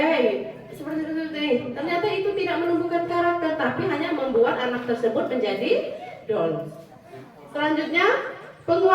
seperti itu. Ternyata itu tidak menumbuhkan karakter, tapi hanya membuat anak tersebut menjadi down. Selanjutnya,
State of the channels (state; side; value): identical; both; correlation 1.00